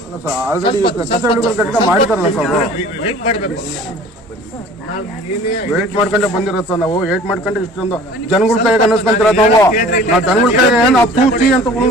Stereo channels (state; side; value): normal; both; correlation 0.46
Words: ಸರ್, ಆಲ್ರೆಡಿ ಮಾಡಿದಾರಲ್ಲ ಸರ್, ವೇಟ್ ಮಾಡಬೇಕು. ವೇಟ್ ಮಾಡ್ಕೊಂಡೆ ಬಂದಿರೋದು ಸರ್. ನಾವು ವೇಟ್ ಮಾಡ್ಕೊಂಡೆ ಇಷ್ಟೊಂದು ಜನಗಳ ಕೈಗೆ ಅನ್ನಿಸ್ಕೊಂತೀರ ನಾವು ಜನಗಳ ಕೈಗೆ ನಾವು ತೂಚಿ ಅಂತ